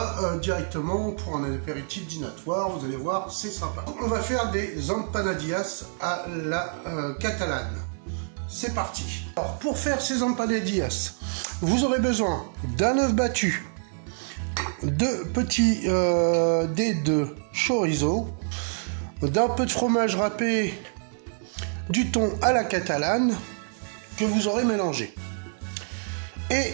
directement pour un apéritif dînatoire, vous allez voir c'est sympa. On va faire des empanadillas à la catalane. C'est parti. Alors pour faire ces empanadillas, vous aurez besoin d'un œuf battu, de petits dés de chorizo, d'un peu de fromage râpé, du thon à la catalane que vous aurez mélangé et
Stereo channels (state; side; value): silent; left; 60 dB below the other